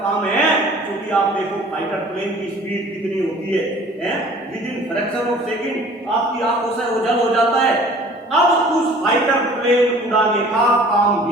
काम है, क्योंकि आप देखो फाइटर प्लेन की स्पीड कितनी होती है with in fraction of second आपकी आंखों से ओझल हो जाता है। अब उस फाइटर प्लेन उड़ाने का काम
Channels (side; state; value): both; normal; correlation 0.49